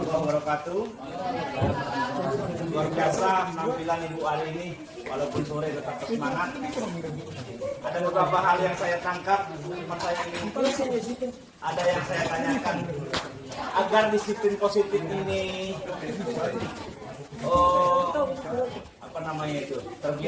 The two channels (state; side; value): identical; both; correlation 1.00